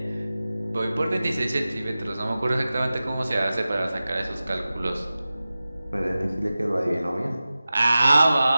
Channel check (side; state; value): both; inverted; correlation -0.96